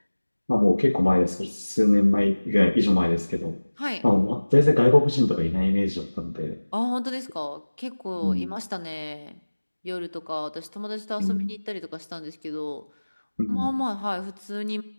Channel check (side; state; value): both; inverted; correlation -1.00